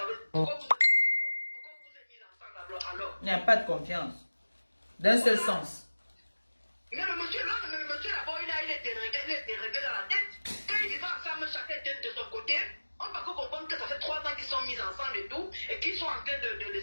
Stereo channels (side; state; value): both; inverted; correlation -1.00